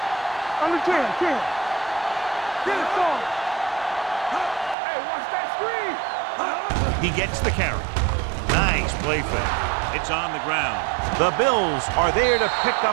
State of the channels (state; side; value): drops out; left; at 4.8 s